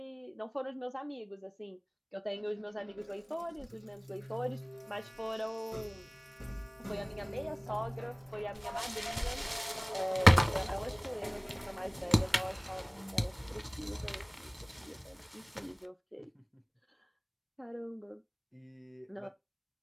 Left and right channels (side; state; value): both; identical; correlation 1.00